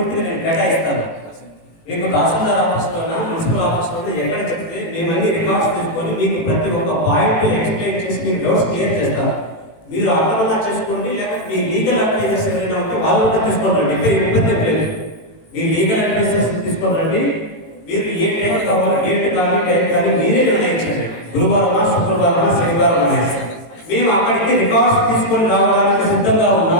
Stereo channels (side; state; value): right; late; 18 ms